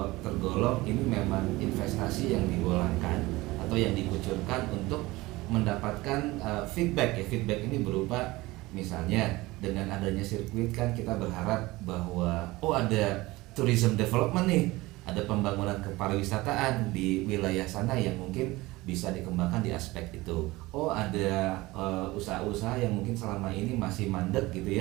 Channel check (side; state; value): left; quieter; 20.3 dB